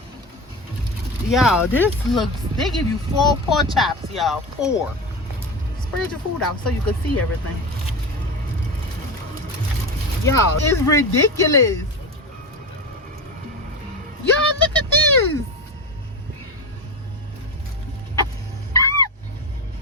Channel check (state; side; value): normal; both; correlation 0.22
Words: Y'all, this looks... They give you 4 pork chops, y'all. 4. Spread your food out so you can see everything. Y'all, it's ridiculous. Y'all, look at this.